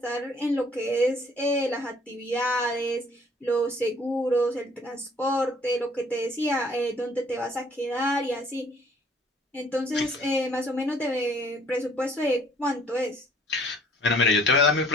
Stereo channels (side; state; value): both; normal; correlation 0.57